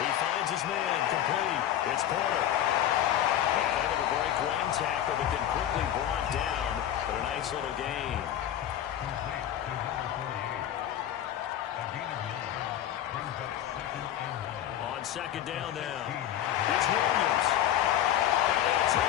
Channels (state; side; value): quieter; right; 11.3 dB